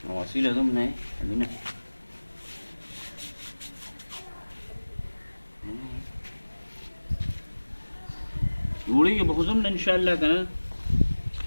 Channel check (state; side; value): inverted; both; correlation -1.00